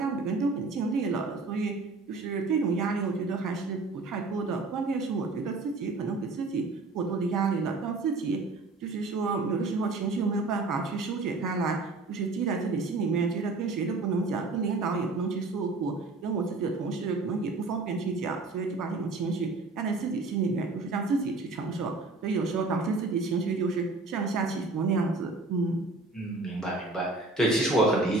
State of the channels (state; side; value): quieter; left; 3.4 dB